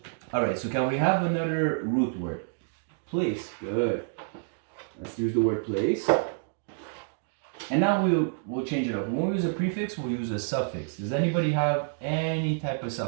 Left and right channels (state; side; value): silent; left; digital silence